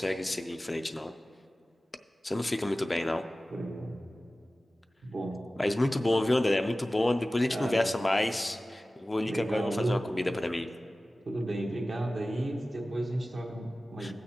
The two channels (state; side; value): normal; both; correlation 0.96